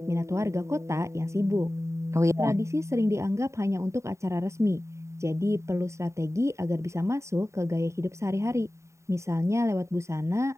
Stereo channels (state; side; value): late; left; 0.14 ms